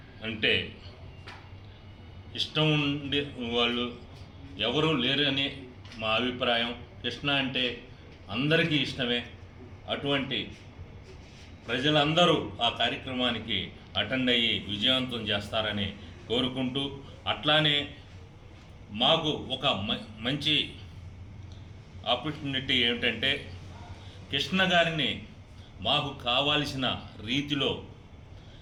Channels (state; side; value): identical; both; correlation 1.00